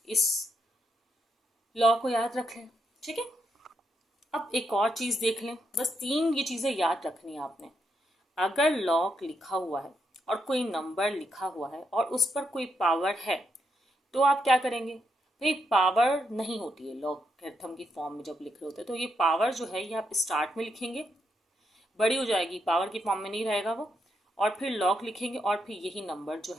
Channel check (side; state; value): both; normal; correlation 0.80